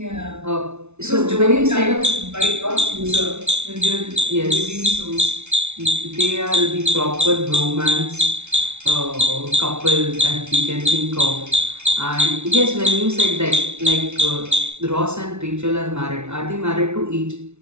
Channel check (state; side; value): late; left; 0.82 ms